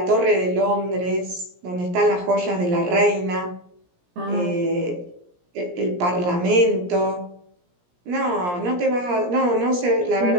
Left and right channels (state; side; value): late; left; 17 ms